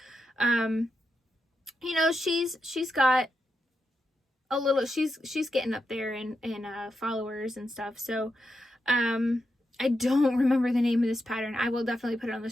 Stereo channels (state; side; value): normal; both; correlation 0.85